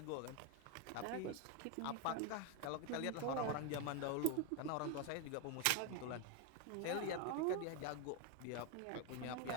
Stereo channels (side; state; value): both; different; correlation 0.02